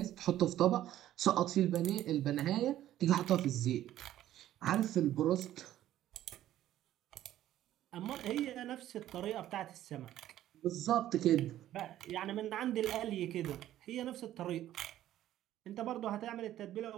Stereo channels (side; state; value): left; quieter; 12.9 dB